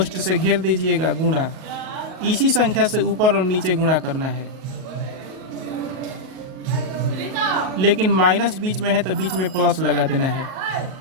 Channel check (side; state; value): left; late; 38 ms